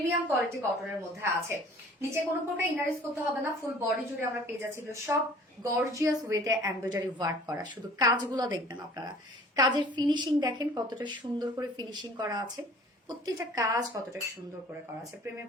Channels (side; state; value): both; normal; correlation 0.50